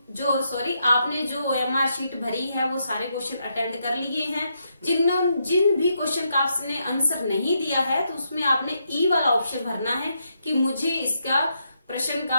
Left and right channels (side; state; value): both; inverted; correlation -0.80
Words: जो ओएमआर शीट भरी है वो सारे क्वेश्चन अटेंड कर लिए हैं। जिन भी क्वेश्चन का आपने आंसर नहीं दिया है तो उसमें आपने ई वाला ऑप्शन भरना है कि मुझे इसका प्रश्न